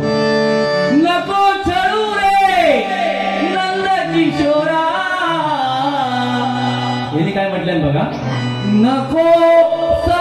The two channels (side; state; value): both; identical; correlation 1.00